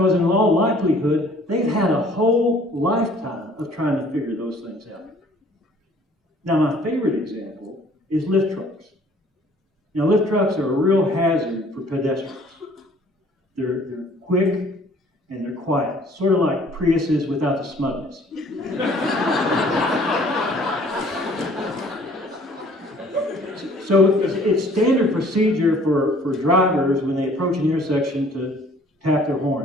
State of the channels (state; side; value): normal; both; correlation 0.55